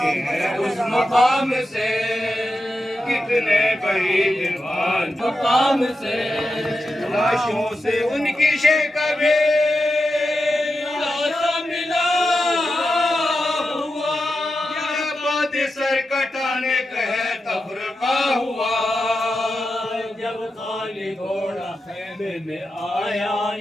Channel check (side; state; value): both; normal; correlation 0.90